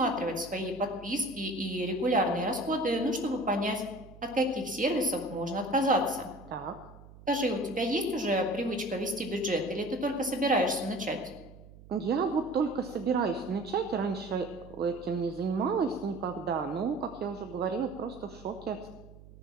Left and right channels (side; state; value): right; noise; hum, 19 dB below the sound